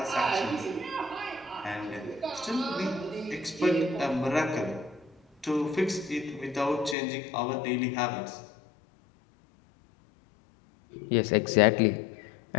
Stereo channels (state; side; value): drops out; right; at 7.0 s